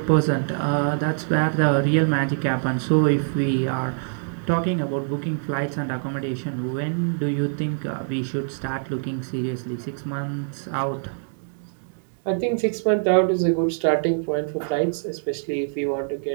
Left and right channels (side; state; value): left; silent; digital silence